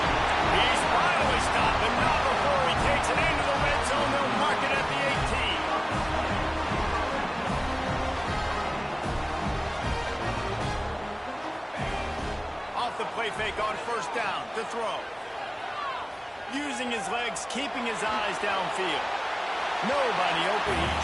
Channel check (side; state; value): both; identical; correlation 1.00